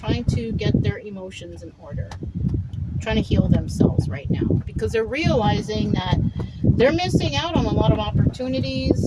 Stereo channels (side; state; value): both; identical; correlation 1.00